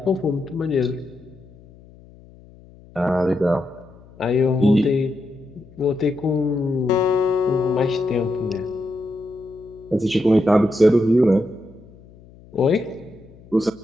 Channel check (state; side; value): noise; left; hum, 24 dB below the sound